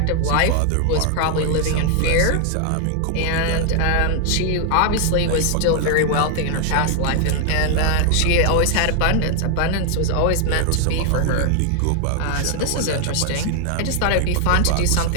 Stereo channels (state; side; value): different; both; correlation 0.00